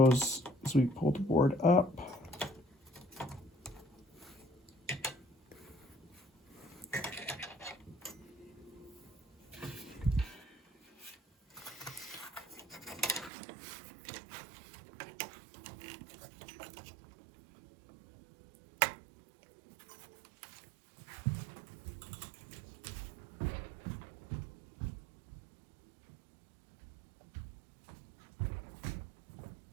as we pull the board up.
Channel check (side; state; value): left; drops out; at 13.3 s